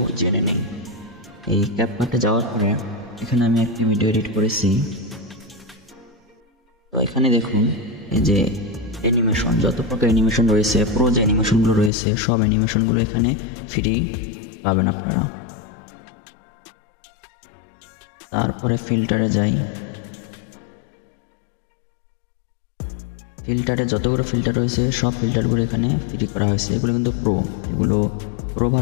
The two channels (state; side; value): drops out; right; at 11.9 s